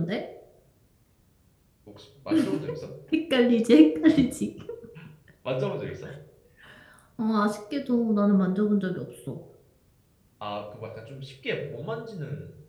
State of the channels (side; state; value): both; identical; correlation 1.00